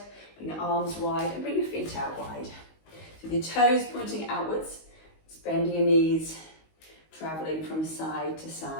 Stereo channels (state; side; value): late; right; 19 ms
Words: Bring your arms wide and bring your feet out wide. So with your toes pointing outwards, just bending your knees, traveling from side to